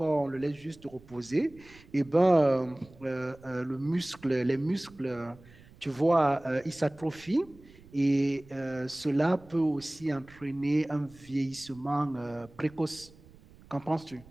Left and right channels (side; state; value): right; noise; rumble, 24 dB below the sound